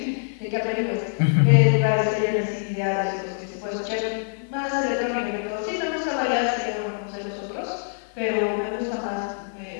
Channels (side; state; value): right; silent; digital silence